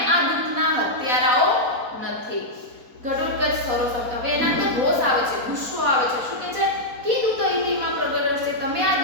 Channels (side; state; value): left; late; 4.0 ms